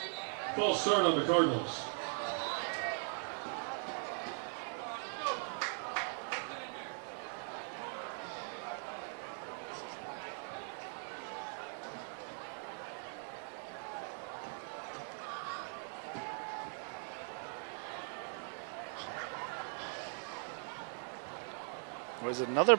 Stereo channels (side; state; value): left; silent; 51 dB below the other